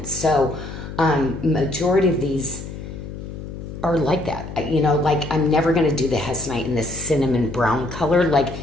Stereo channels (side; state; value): left; noise; hum, 10 dB below the sound